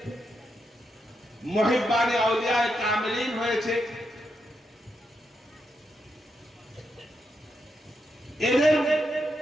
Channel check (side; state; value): both; normal; correlation 0.83